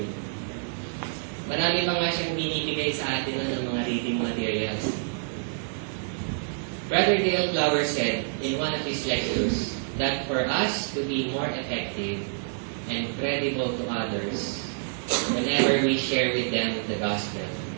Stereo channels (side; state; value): left; silent; digital silence